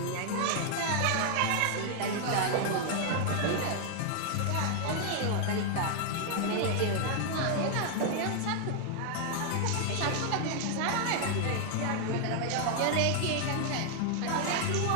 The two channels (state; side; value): different; both; correlation 0.00